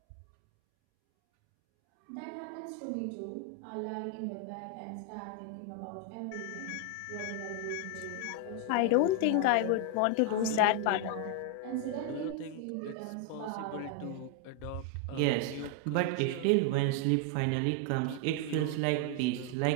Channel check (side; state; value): both; different; correlation 0.00